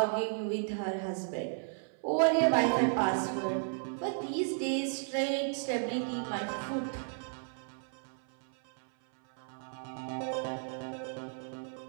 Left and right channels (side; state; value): left; silent; 55 dB below the other